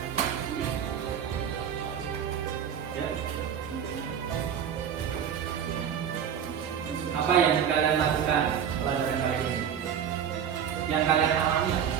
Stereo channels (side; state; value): left; quieter; 8.4 dB